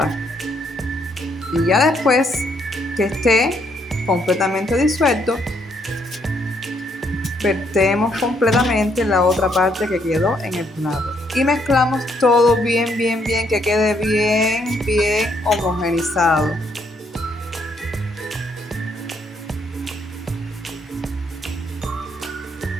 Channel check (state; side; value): normal; both; correlation 0.72